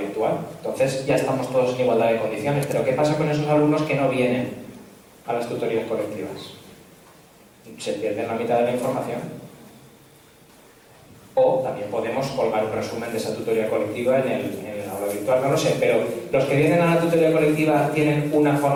Entonces ya estamos todos en igualdad de condiciones, pero ¿qué pasa con esos alumnos que no vienen a las tutorías colectivas? Se pierden la mitad de la información. O también podemos colgar un resumen de esa tutoría colectiva en el aula virtual, no lo sé, pero los que vienen a la tutoría colectiva tienen una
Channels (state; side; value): identical; both; correlation 1.00